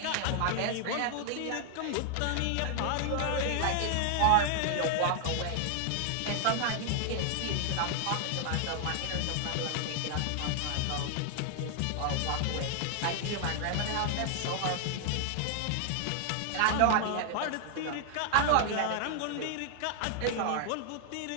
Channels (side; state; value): both; different; correlation 0.00